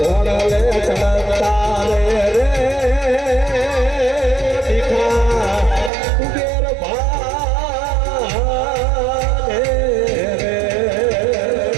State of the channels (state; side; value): drops out; left; at 5.9 s